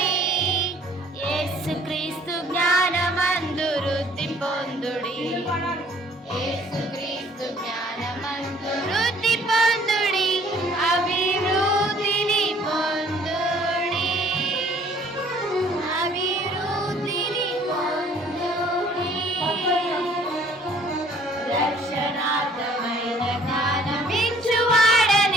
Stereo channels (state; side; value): normal; both; correlation 0.57